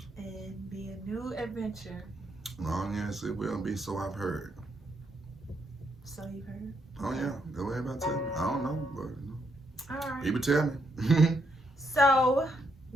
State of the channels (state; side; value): normal; both; correlation 0.76